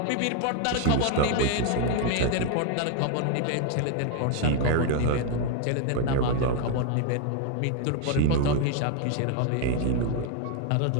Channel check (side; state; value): both; different; correlation 0.00